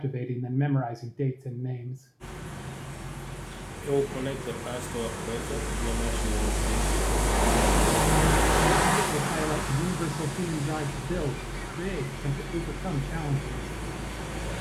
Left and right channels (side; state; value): both; identical; correlation 1.00